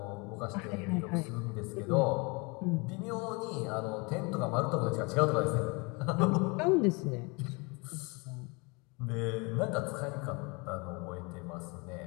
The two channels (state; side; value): quieter; right; 29.1 dB